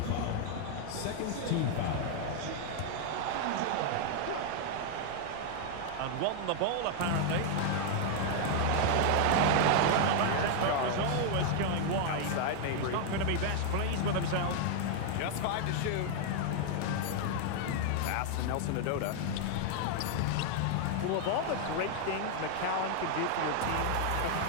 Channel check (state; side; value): different; both; correlation 0.00